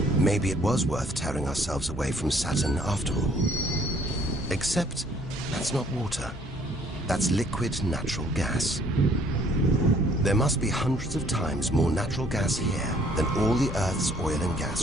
Maybe it was worth tearing ourselves away from Saturn after all. Except that's not water. That's liquid natural gas. There must be hundreds of times more natural gas here than all the Earth's oil and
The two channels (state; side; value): normal; both; correlation 0.61